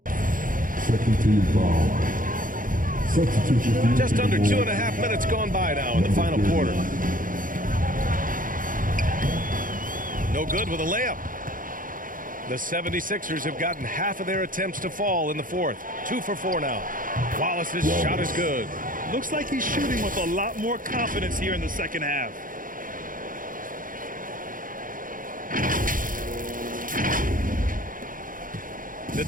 Second team foul. Substitution. Just under 2.5 minutes gone by now in the final quarter. No good with a layup. The 76ers have gotten half of their attempts to fall in the fourth. 2 for 4 now. Wallace's shot is good. Looks like he's shooting with a lot more confidence here in the second half. The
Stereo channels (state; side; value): late; left; 0.40 ms